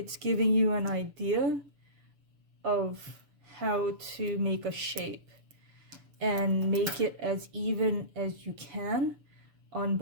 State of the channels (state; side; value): late; left; 6.9 ms